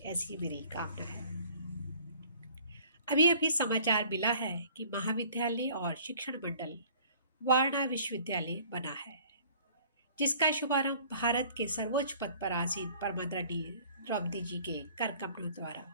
ऐसी मेरी कामना है। अभी अभी समाचार मिला है कि महाविद्यालय और शिक्षण मंडल वारणा विश्वविद्यालय बना है, जिसका शुभारंभ भारत के सर्वोच्च पद पर आसीन परमादरणीय द्रौपदी जी के कर कमलों द्वारा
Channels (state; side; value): inverted; both; correlation -0.53